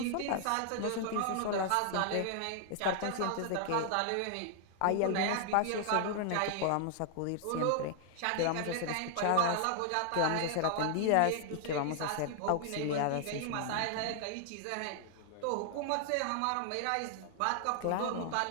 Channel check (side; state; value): both; different; correlation 0.00